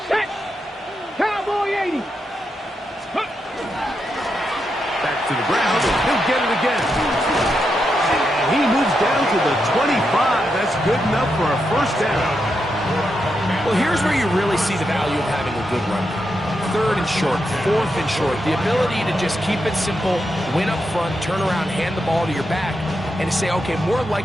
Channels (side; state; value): both; normal; correlation 0.85